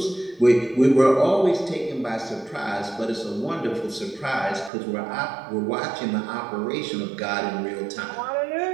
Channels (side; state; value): left; drops out; at 4.7 s